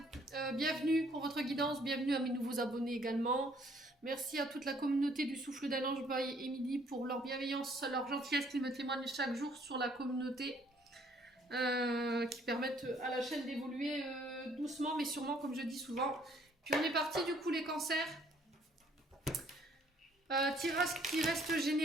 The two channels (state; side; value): normal; both; correlation 0.62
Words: bienvenue pour votre guidance, bienvenue à mes nouveaux abonnés également. Merci à toute la communauté du Souffle d'un Ange by Émilie pour leur bienveillance, leur gentillesse qu'ils me témoignent chaque jour sur la communauté. Qui permettent à la chaîne d'évoluer doucement mais sûrement, comme je dis souvent. Puis on est parti du coup les cancers. Tirage qui reste